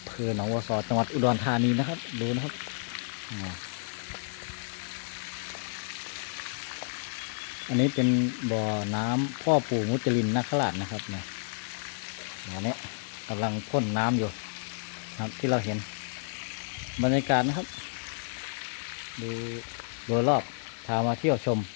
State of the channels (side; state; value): right; silent; digital silence